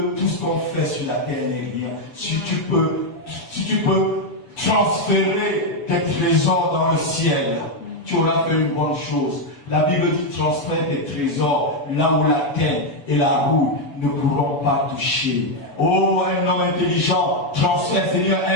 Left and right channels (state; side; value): late; right; 7.0 ms